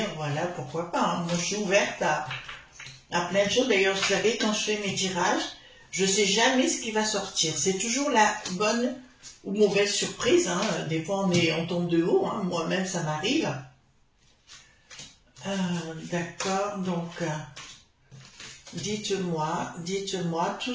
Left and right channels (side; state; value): both; identical; correlation 1.00